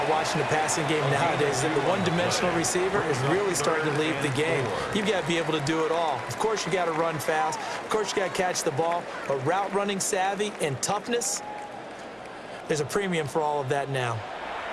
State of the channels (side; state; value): both; identical; correlation 1.00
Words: watching the passing game nowadays is that the one-dimensional receiver is really starting to leave the game. You've got to be able to do it all. Of course, you got to run fast. Of course, you got to catch the ball. But route running savvy and toughness, there's a premium for all of that now.